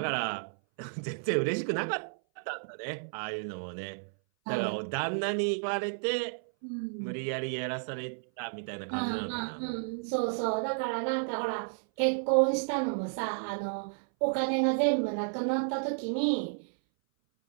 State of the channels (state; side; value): silent; left; 57 dB below the other